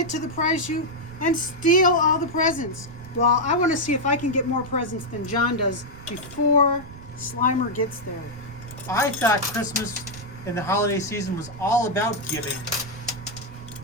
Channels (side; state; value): right; noise; rumble, 16 dB below the sound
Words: to the prize chute and steal all the presents. Well, I want to see if I can get more presents than John does before Slimer gets there. I thought Christmas and the holiday season was all about giving,